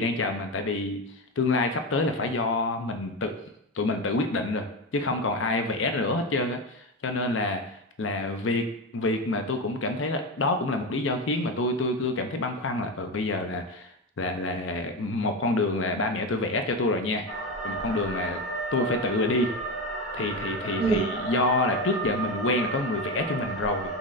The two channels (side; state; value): both; normal; correlation 0.17